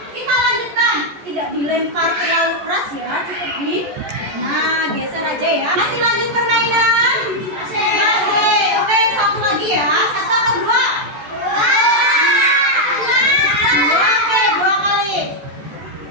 Kita lanjutkan. Tidak dilempar terlalu keras ya, cukup di. Nah, geser aja ya. Masih lanjut permainan? Masih. Oke, satu lagi ya. Satu atau dua? Oke, dua kali.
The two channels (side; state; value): left; late; 14 ms